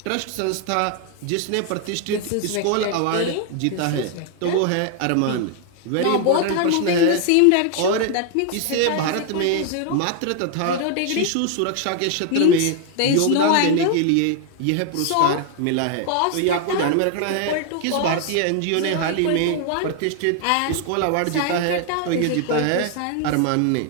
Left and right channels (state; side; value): different; both; correlation 0.00